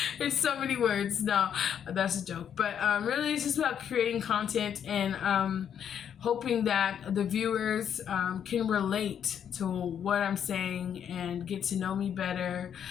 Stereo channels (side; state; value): right; quieter; 8.7 dB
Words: It's so many words. No, that's a joke. But really, it's just about creating content and hoping that the viewers can relate to what I'm saying and get to know me better